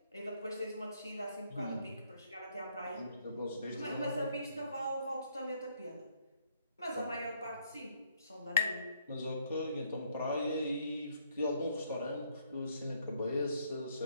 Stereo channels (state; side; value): inverted; both; correlation -0.69